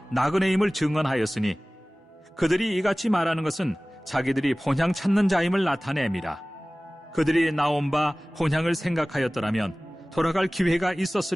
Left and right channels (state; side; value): normal; both; correlation 0.98